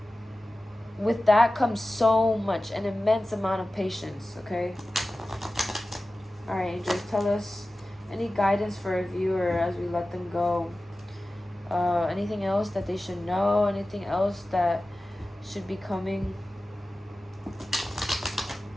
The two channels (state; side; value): normal; both; correlation 0.96